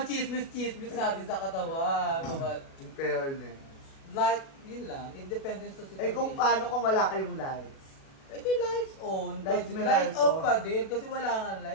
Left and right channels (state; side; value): late; right; 37 ms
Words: chismis natin sa katawan. In fairness. Like, yun lang. Independent sa situation. Kung paano kung wala kayong lights? Di lights on. Lights off pa din. Kasi wala nga